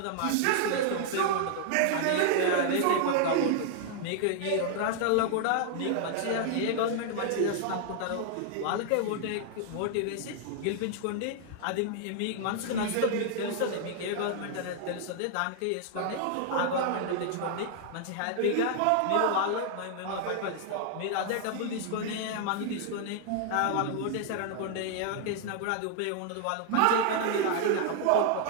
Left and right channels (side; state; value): both; different; correlation 0.00